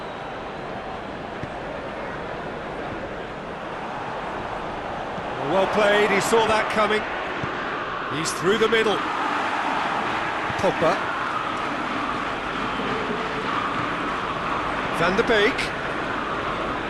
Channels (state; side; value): identical; both; correlation 1.00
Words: Well played, he saw that coming. He's through the middle. Pogba. Van der Beek.